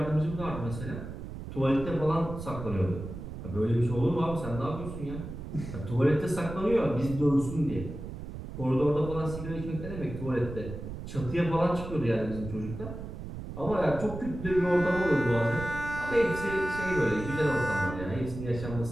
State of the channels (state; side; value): noise; right; rumble, 9 dB below the sound